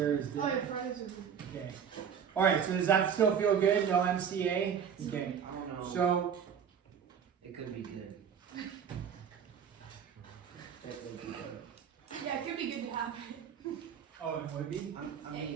Oh, your Fridays are good. Okay. All right. So does that still feel good? No MCA. Okay. I don't know. So It could be good. That could be good. Yeah, it could be good to have. oh, it would be. I'm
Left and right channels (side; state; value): left; quieter; 7.6 dB